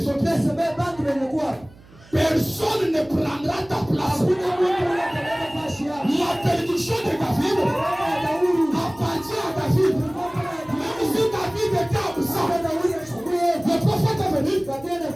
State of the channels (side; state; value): right; noise; hum, 24 dB below the sound